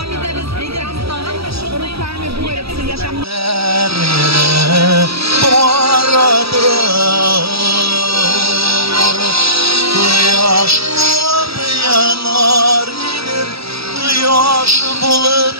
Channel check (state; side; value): late; left; 0.77 ms